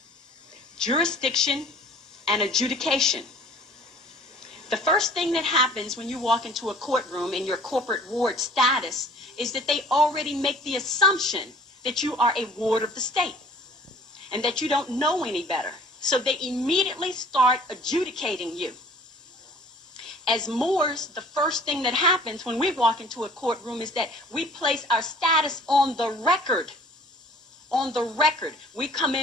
jurisdiction, and adjudication. The first thing that happens when you walk into a courtroom in your corporate ward status is that they already make the assumption that you are a ward of the state and that you don't know any better. So they immediately start adjudicating you. As Moors, the first thing that happens when we walk into a courtroom is that we place our status on the record. On the record. We come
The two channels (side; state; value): both; normal; correlation 0.50